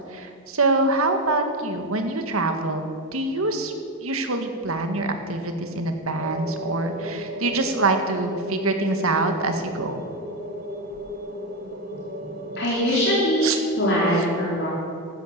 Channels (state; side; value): normal; both; correlation 0.12